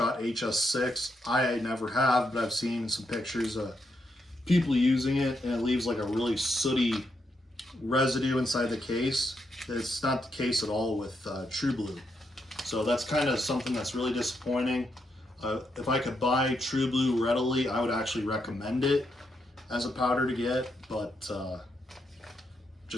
HS6, I never have, but I've seen some pictures of people using it, and it leaves like a really sooty residue inside the case. It's not the case at all with True Blue. So that's kind of something that's really disappointing. If I could buy True Blue readily, I would actually recommend it as a powder to get, but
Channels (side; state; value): both; normal; correlation 0.81